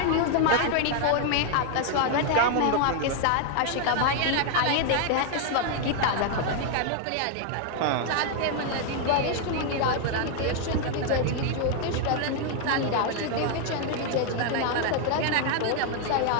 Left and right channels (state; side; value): different; both; correlation 0.00